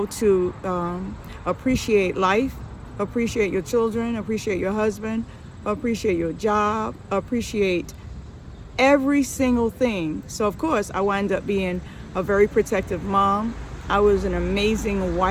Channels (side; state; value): both; identical; correlation 1.00